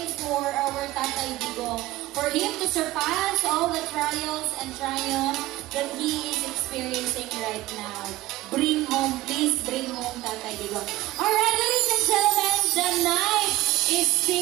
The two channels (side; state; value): left; quieter; 17.0 dB